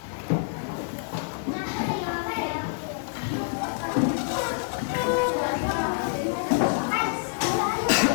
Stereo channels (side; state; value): right; silent; digital silence